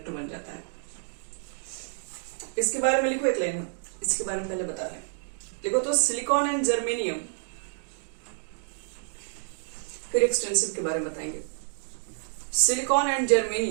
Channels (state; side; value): silent; left; digital silence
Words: बन जाता है। इसके बारे में लिखो एक लाइन, इसके बारे में पहले बता रहे हैं। लिखो तो सिलिकॉन एंड जर्मेनियम, फिर एक्सटेंसिव के बारे में बताएंगे। Silicon and